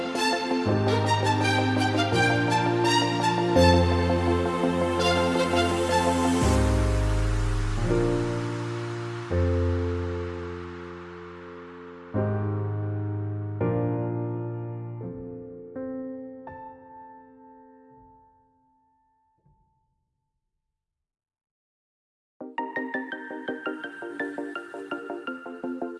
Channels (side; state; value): both; identical; correlation 1.00